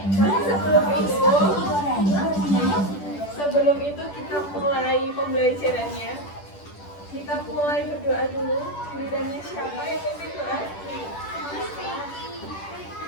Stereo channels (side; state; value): right; late; 10 ms